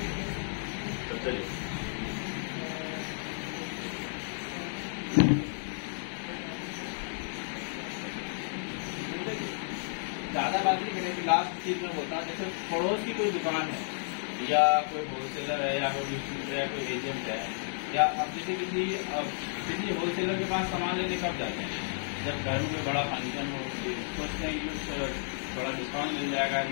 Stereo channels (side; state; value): right; silent; digital silence